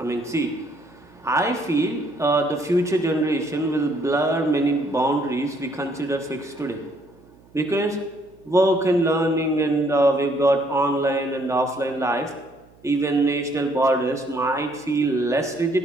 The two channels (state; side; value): noise; right; hum, 28 dB below the sound